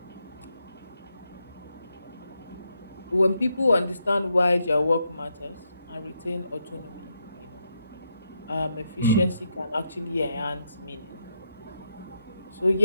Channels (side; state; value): both; inverted; correlation -0.81